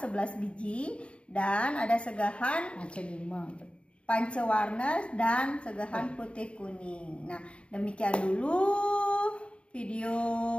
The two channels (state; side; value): late; right; 0.059 ms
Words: biji, dan ada segahan pancewarna dan segahan putih kuning. Nah, demikian dulu video